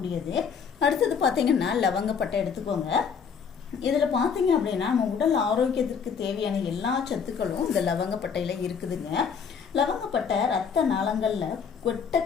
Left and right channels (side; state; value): right; quieter; 6.4 dB